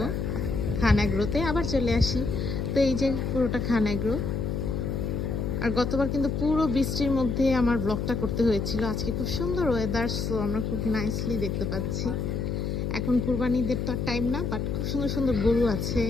খান এগ্রোতে, আবার চলে আসি। তো এই যে পুরোটা খান এগ্রো। আর গতবার কিন্তু পুরো বৃষ্টির মধ্যে আমার ব্লগটা করতে হয়েছিল। আজকে খুব সুন্দর ওয়েদার, সো আমরা খুব নাইসলি দেখতে পাচ্ছি। এখন কুরবানিদের তো টাইম না, বাট খুব সুন্দর সুন্দর গরু আছে,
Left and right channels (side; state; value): left; noise; hum, 1 dB below the sound